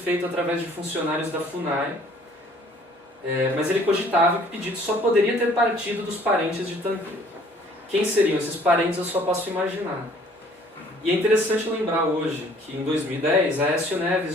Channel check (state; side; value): normal; both; correlation 0.56